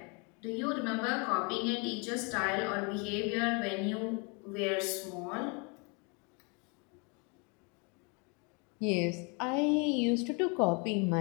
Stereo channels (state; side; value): quieter; right; 32.7 dB